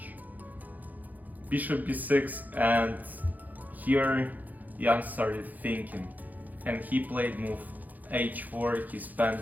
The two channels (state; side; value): late; left; 0.082 ms